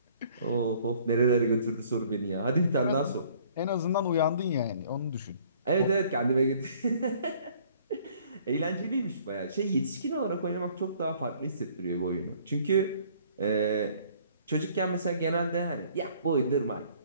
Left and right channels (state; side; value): inverted; both; correlation -0.58